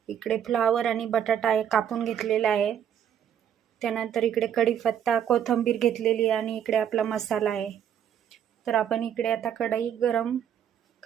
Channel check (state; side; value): quieter; left; 9.2 dB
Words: इकडे फ्लावर आणि बटाटा आहे कापून घेतलेला आहे, त्यानंतर इकडे कढीपत्ता, कोथिंबीर घेतलेली आणि इकडे आपला मसाला आहे. तर आपण इकडे आता कढई गरम